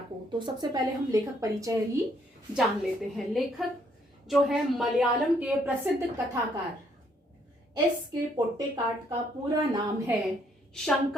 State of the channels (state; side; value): normal; both; correlation 0.69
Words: तो सबसे पहले हम लेखक परिचय ही जान लेते हैं। लेखक जो है मलयालम के प्रसिद्ध कथाकार S.K. पोट्टेकाट का पूरा नाम है